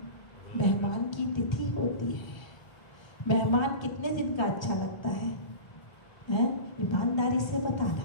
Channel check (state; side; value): late; right; 1.3 ms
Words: मेहमान की तिथि होती है। मेहमान कितने दिन का अच्छा लगता है? ईमानदारी से बताना